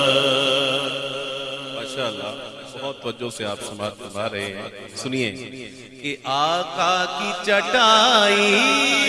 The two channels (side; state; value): both; identical; correlation 1.00